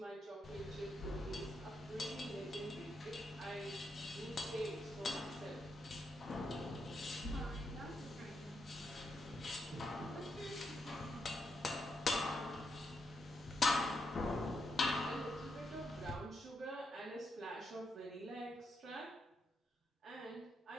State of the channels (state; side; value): normal; both; correlation 0.81